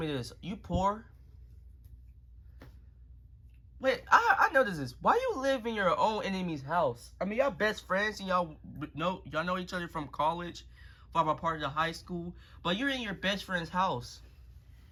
this. You poor? Wait, I noticed this. Why you live in your own enemy's house? I mean, y'all best friends and y'all know each other from college, from a part of the high school, but you're in your best friend's house.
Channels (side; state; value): both; identical; correlation 1.00